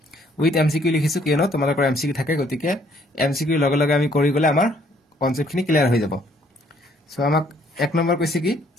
with MCQ লিখিছো কিয়নো তোমালোকৰ MCQ থাকে গতিকে MCQ লগে লগে আমি কৰি গলে আমাৰ কনসেপ্ট খিনি ক্লিয়াৰ হৈ যাব সো আমাক এক নম্বৰ কৈছে কি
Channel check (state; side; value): normal; both; correlation 0.64